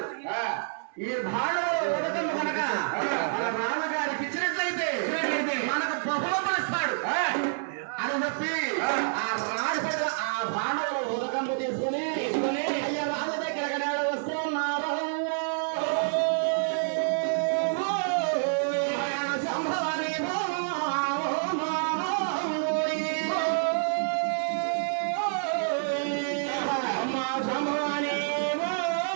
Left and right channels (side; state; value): left; silent; 59 dB below the other